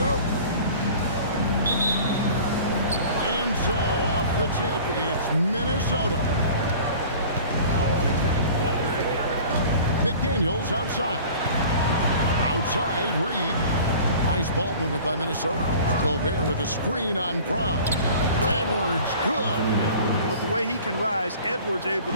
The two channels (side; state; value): both; inverted; correlation -0.44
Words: And so, off the tip, it's Minnesota. McDaniels outside. Outside, Reed. Nice ball movement by Minnesota. Gobert with a screen on Brown. Edwards, good. With the way he can rise, Edwards able